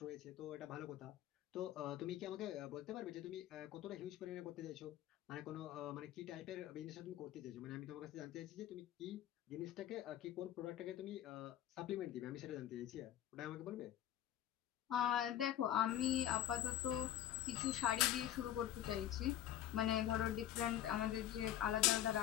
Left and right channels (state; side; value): quieter; right; 12.1 dB